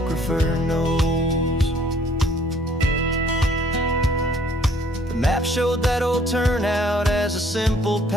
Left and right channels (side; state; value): both; normal; correlation 0.60